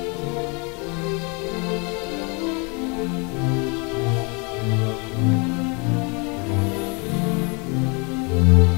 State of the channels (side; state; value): right; quieter; 32.0 dB